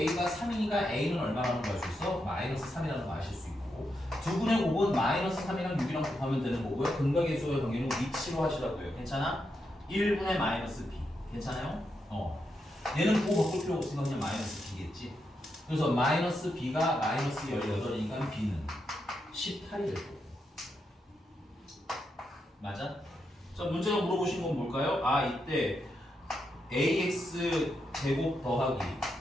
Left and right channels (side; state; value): both; normal; correlation 0.83